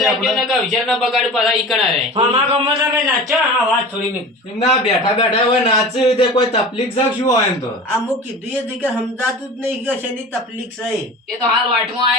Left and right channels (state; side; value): normal; both; correlation 0.35